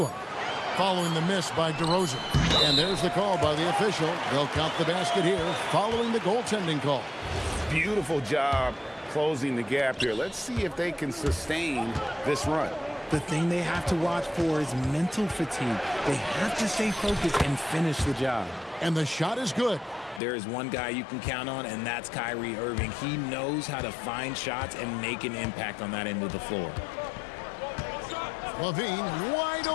Following the miss by DeRozan. And there's the call by the official. They'll count the basket here following the goaltending call. Beautiful job closing the gap here. Let's see if they can sustain this run. The thing they have to watch for is mental fatigue. They have to stay focused and finish the job. And the shot is good. There is one guy you can count on, and that's Kyrie Irving. He knows how to find shots and make an impact on that end of the floor. Levine wide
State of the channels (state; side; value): drops out; right; at 20.2 s